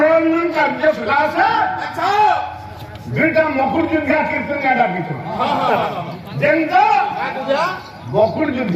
কার্য ক্লাসে দুইটা মকুর যুদ্ধা কীর্তন ডাকিছ যেটা মকুর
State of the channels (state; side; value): identical; both; correlation 1.00